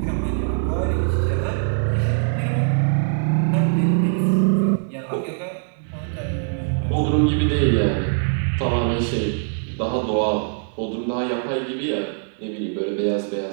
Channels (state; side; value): silent; left; digital silence